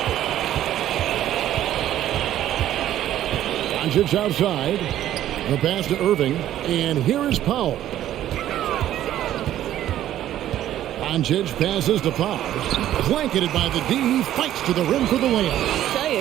Doncic outside. The pass to Irving. And here is Powell. Doncic passes to Powell. Blanketed by the D. He fights to the rim for the layup. I tell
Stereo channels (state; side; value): quieter; left; 12.4 dB